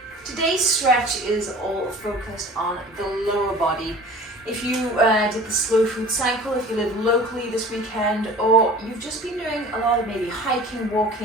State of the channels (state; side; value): normal; both; correlation 0.43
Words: Today's stretch is all focused on the lower body. If you did the slow food cycle, if you live locally this weekend, or you've just been doing a lot of maybe hiking,